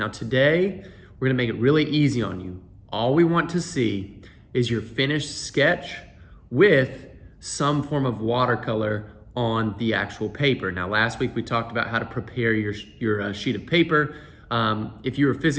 today, we're going to make it really easy on you. All we want to see is your finished sketch with some form of watercolor on the actual paper. Now last week we talked about how to prepare your sheet of paper. If you were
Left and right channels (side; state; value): both; identical; correlation 1.00